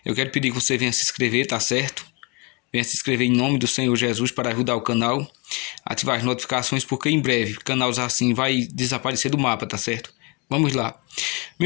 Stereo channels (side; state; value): right; quieter; 30.1 dB